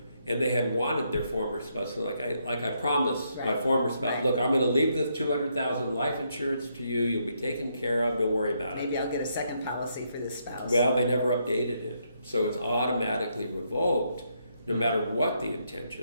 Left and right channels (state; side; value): inverted; both; correlation -0.76